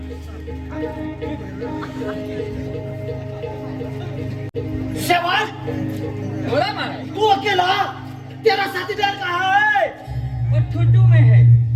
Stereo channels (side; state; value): both; identical; correlation 1.00